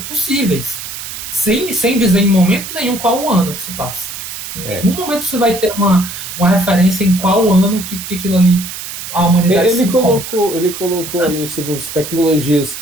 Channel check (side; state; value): right; noise; hiss, 9 dB below the sound